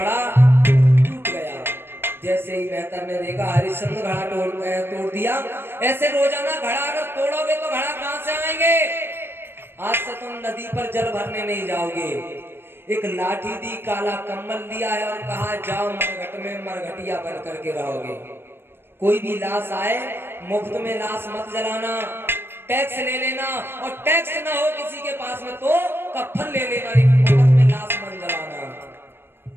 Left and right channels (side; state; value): left; late; 0.11 ms